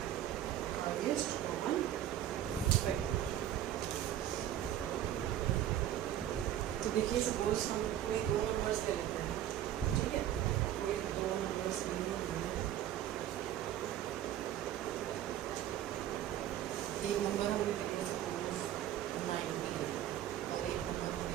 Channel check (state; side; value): quieter; left; 11.7 dB